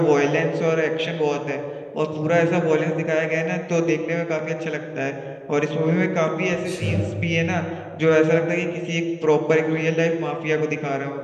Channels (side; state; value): both; identical; correlation 1.00